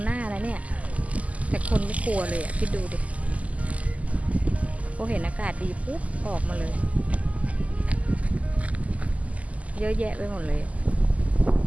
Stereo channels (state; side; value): late; left; 0.070 ms